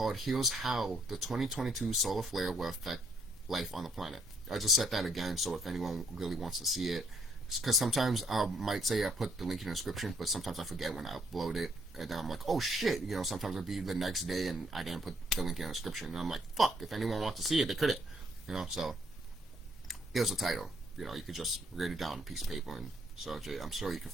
"Here's How the 2022 Solar Flare Will Affect Life on the Planet." I just said that again, so if anyone really wants to see it, because sometimes I might say I put the link in the description, but sometimes I forget when I upload it, and then I'm like, oh shit, you know, sometimes it'll be the next day and I didn't put the link in the description, and I'm like, fuck, if anyone wants to see it, they couldn't, you know. So here's the title. You know, you could just write it down on a piece of paper and search it. I'm sure you can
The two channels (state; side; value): normal; both; correlation 0.69